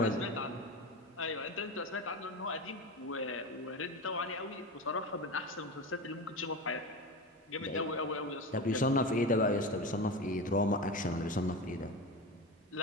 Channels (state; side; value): normal; both; correlation 0.24